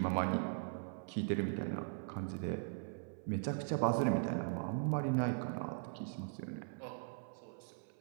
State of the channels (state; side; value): silent; left; 51 dB below the other